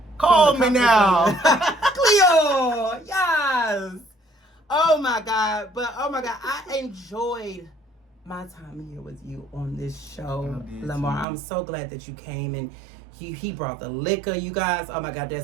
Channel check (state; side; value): drops out; left; at 11.2 s